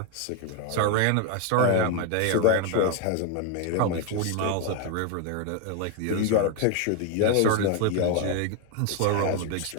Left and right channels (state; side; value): different; both; correlation 0.01